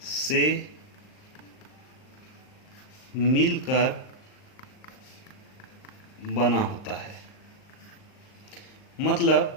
से मिलकर बना होता है। मतलब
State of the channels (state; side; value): late; right; 38 ms